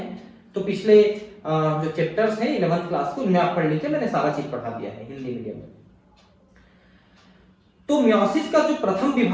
तो पिछले जो चैप्टर्स हैं 11th क्लास को, उनमें आप पढ़ लीजिए, मैंने सारा चीज पढ़ा दिया है हिंदी मीडियम में। तो मियोसिस का जो प्रथम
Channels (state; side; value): identical; both; correlation 1.00